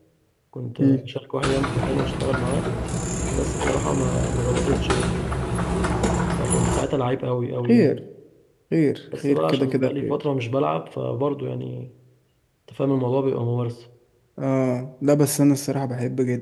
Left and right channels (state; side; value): identical; both; correlation 1.00